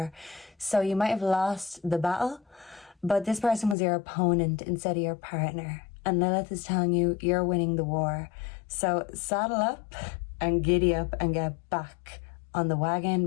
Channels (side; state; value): right; drops out; at 3.8 s